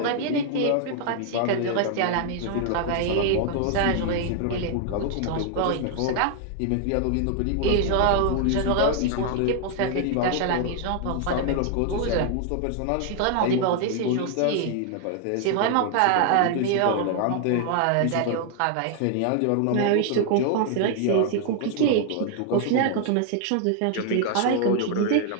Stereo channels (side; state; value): both; different; correlation 0.00